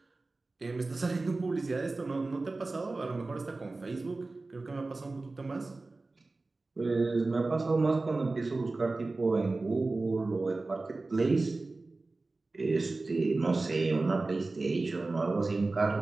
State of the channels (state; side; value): quieter; left; 3.4 dB